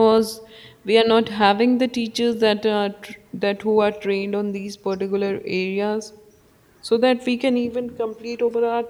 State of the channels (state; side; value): identical; both; correlation 1.00